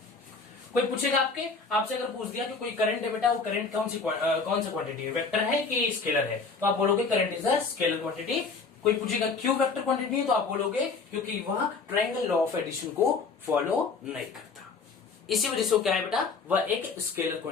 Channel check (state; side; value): quieter; right; 4.6 dB